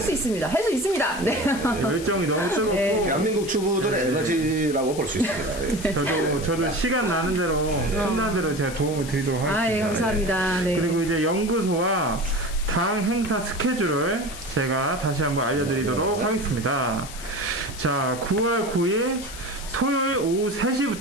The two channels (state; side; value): noise; left; hiss, 13 dB below the sound